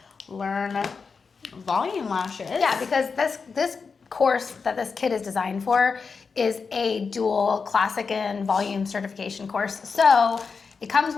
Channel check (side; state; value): right; quieter; 5.1 dB